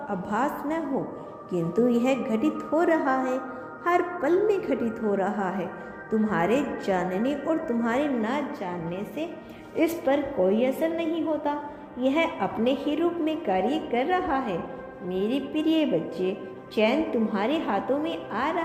आभास न हो, किंतु यह घटित हो रहा है, हर पल में घटित हो रहा है। तुम्हारे जानने और तुम्हारे ना जानने से इस पर कोई असर नहीं होता, यह अपने ही रूप में कार्य कर रहा है। मेरे प्रिय बच्चे, चैन तुम्हारे हाथों में आ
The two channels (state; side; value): identical; both; correlation 1.00